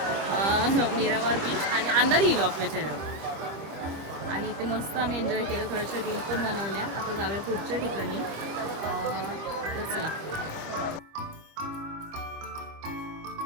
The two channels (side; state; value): left; late; 25 ms